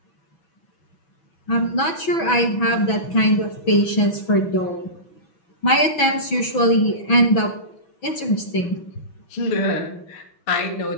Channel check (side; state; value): right; late; 6.1 ms